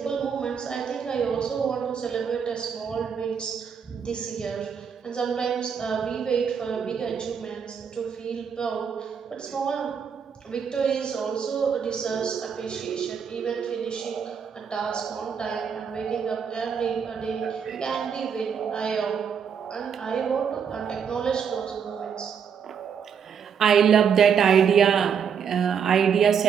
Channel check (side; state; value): left; quieter; 7.1 dB